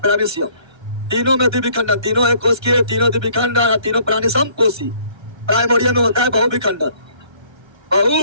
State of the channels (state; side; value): late; left; 1.3 ms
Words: तीनों में द्विविखंडन, तीनों एक कोश के, तीनों द्विविखंडन, तीनों प्राणी समकोशी। प्राइमोरिया में होता है बहुविखंडन,